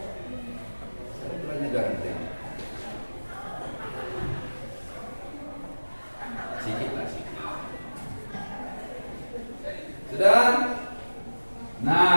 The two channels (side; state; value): both; inverted; correlation -1.00